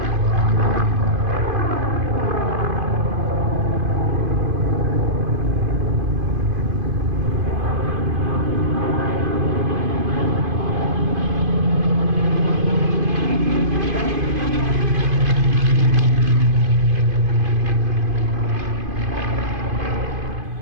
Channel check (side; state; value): left; late; 2.5 ms